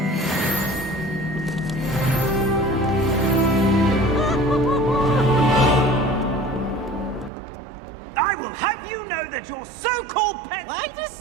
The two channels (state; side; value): drops out; left; at 7.3 s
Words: I will have you know that your so-called pet... Why do